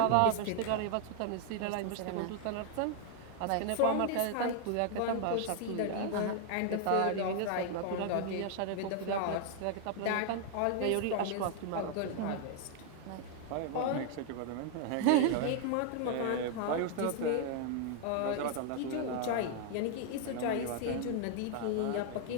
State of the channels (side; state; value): both; different; correlation 0.00